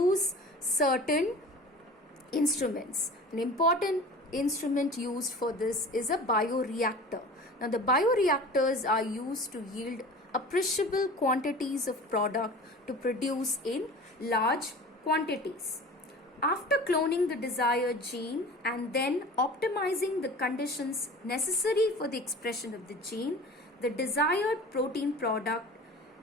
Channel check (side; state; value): both; normal; correlation 0.39